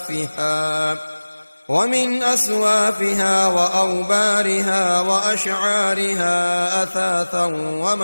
ومن أصوافها وأوبارها وأشعارها أثاثا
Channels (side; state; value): both; inverted; correlation -1.00